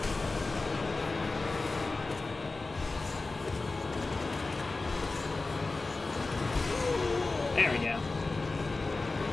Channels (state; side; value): quieter; right; 3.5 dB